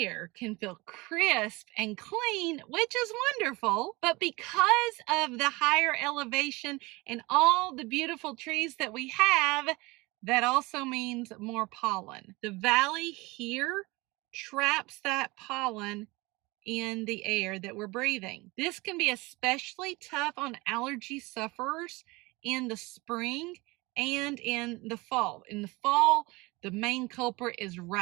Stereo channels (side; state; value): left; quieter; 23.4 dB